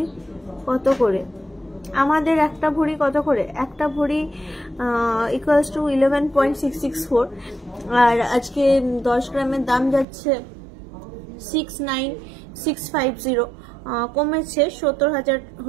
কত করে? আমাদের একটা ভরি কত করে? একটা ভরি ইকুয়ালস টু 11.664, আর আজকে 10 গ্রামের দাম যাচ্ছে 69650। কমেছে, 70,000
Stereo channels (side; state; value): left; drops out; at 10.1 s